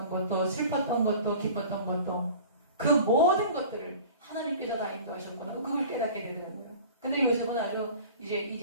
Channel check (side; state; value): both; inverted; correlation -0.41